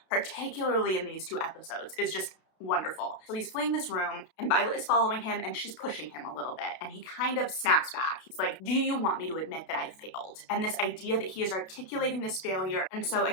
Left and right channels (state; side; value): late; right; 32 ms